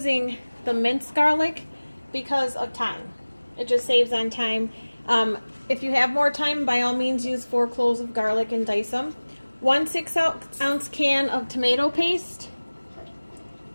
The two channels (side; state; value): both; inverted; correlation -1.00